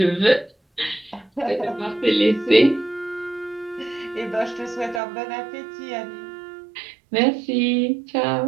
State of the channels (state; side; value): drops out; left; at 5.0 s